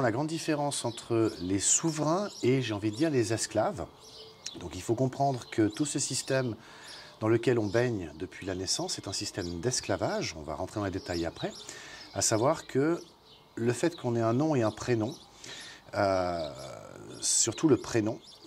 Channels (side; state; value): both; identical; correlation 1.00